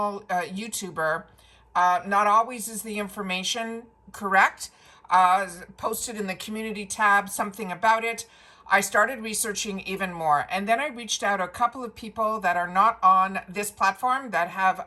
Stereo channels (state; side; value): identical; both; correlation 1.00